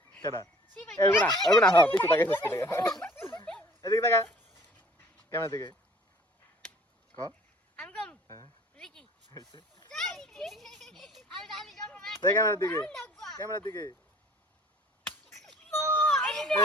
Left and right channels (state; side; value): normal; both; correlation 0.51